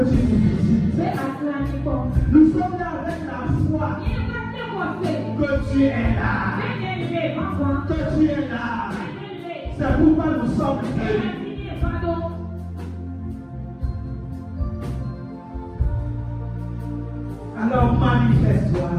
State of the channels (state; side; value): identical; both; correlation 1.00